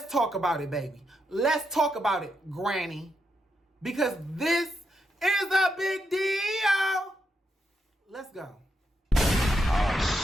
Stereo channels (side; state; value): both; normal; correlation 0.82